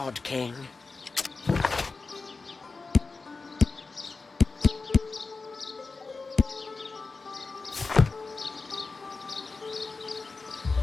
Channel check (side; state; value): right; quieter; 4.0 dB